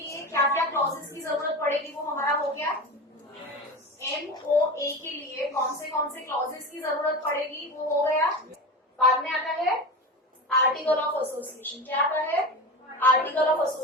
क्या क्या क्लॉजेस की जरूरत पड़ेगी वो हमारा हो गया। MOA के लिए कौन से क्लॉजेस की जरूरत पड़ेगी वो हो गया। बाद में आता है आर्टिकल ऑफ एसोसिएशन। क्या आता है? आर्टिकल ऑफ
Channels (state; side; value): normal; both; correlation 0.26